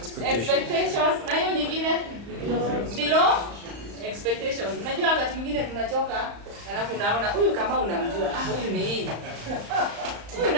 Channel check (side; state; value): left; late; 35 ms